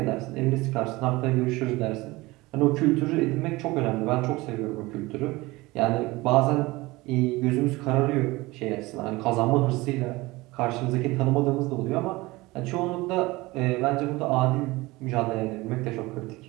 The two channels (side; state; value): left; quieter; 21.1 dB